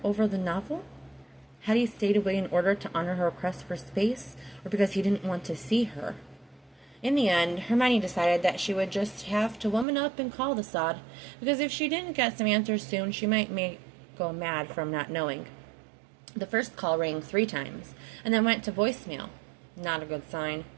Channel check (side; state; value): left; drops out; at 9.9 s